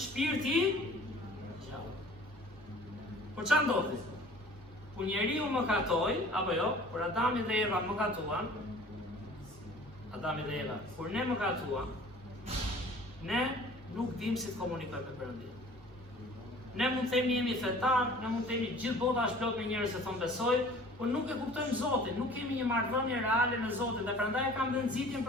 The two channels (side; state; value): both; normal; correlation 0.48